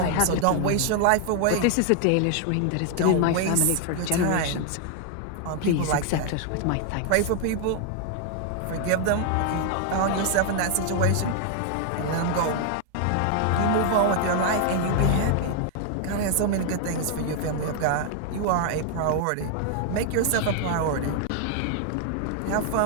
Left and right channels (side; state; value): both; different; correlation 0.00